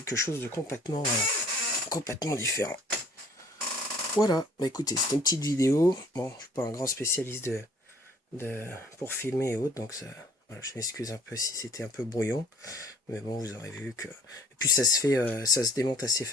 chose de complètement différent. Voilà, bah écoutez, c'était une petite vidéo. Bon, je suis pas un grand spécialiste pour filmer et autres, donc ça, voilà, je m'excuse un peu si c'était un peu brouillon, mais bon, vous aurez vu que... Et puis ça se démonte assez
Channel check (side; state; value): both; normal; correlation 0.55